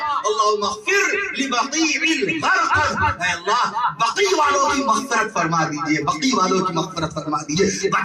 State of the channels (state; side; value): identical; both; correlation 1.00